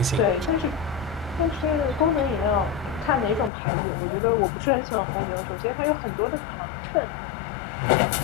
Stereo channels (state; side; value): drops out; right; at 3.5 s